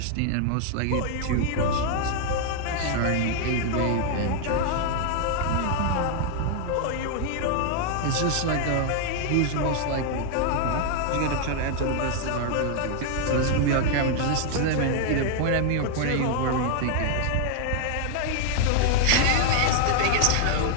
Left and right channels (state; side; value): different; both; correlation 0.00